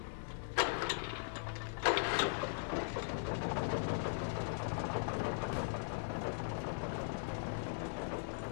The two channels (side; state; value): right; silent; 51 dB below the other